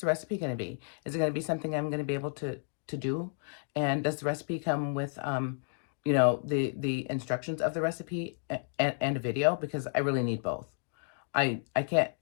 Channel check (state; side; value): silent; right; digital silence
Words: recipe going to be? Is it going to be something I'm going to be able to do? And does the recipe come with the instructions of the recipe and a video? Because I really need both. I can't.